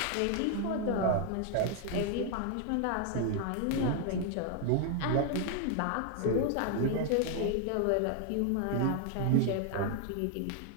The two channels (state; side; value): different; both; correlation 0.00